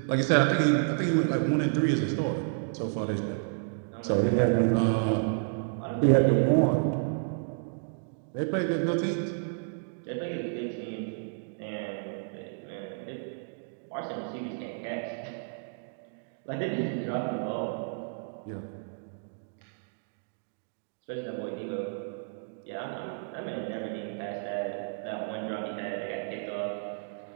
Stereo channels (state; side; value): silent; left; digital silence